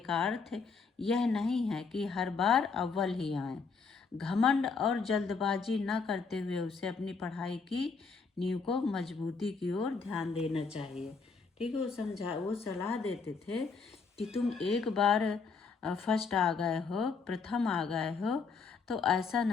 का अर्थ यह नहीं है कि हर बार अव्वल ही आए। घमंड और जल्दबाजी न करते हुए उसे अपनी पढ़ाई की नींव को मजबूती की ओर ध्यान देना चाहिए। ठीक है, वो सलाह देते थे कि तुम एक बार फर्स्ट आ गए हो, प्रथम आ गए हो, तो ऐसा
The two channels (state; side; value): quieter; right; 4.9 dB